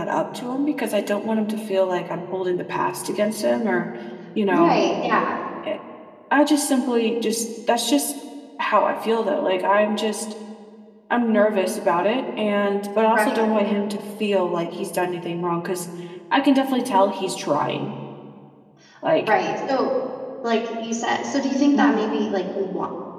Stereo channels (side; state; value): both; identical; correlation 1.00